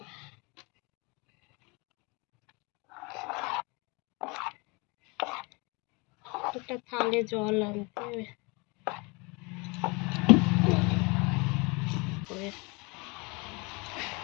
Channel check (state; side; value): quieter; right; 28.2 dB